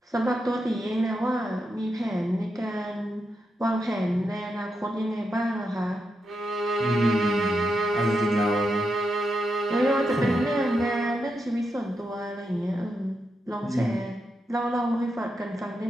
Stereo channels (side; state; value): both; normal; correlation 0.85